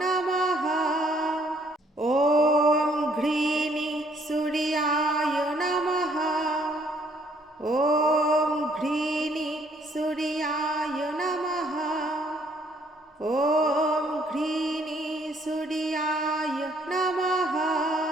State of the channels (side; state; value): both; normal; correlation 0.65